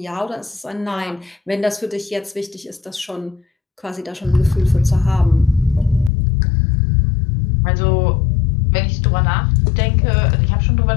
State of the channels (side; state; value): right; drops out; at 6.1 s